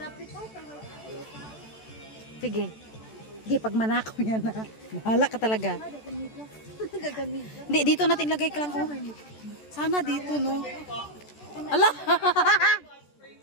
Sige. Sige, pag manakaw yan na. Mahala ka talaga. Hindi, dito natin lagay ka lang. Oh. Sana dito, no? Ala!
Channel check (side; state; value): right; late; 14 ms